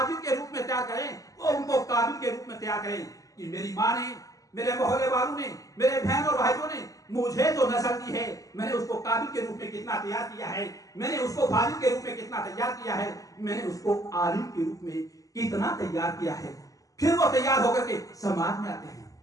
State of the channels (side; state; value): right; late; 0.17 ms